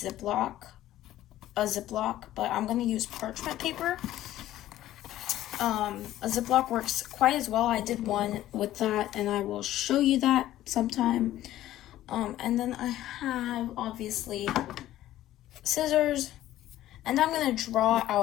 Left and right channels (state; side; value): quieter; right; 13.9 dB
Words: but I'm going to use parchment paper. A Ziploc works quite as well. I did one with that, and I will show you that sometime. And then I have, obviously, scissors, and I'm going to draw